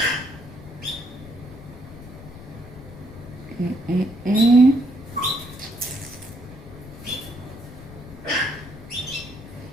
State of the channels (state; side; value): noise; left; rumble, 16 dB below the sound